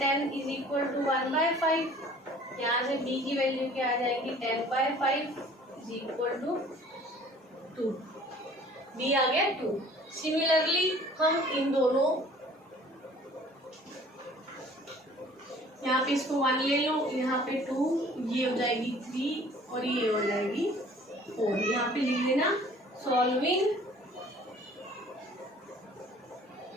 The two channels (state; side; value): normal; both; correlation 0.51